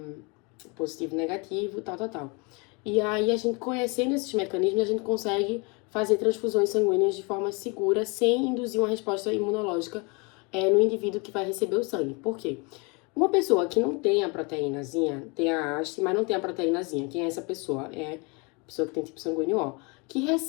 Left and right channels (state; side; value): quieter; right; 30.3 dB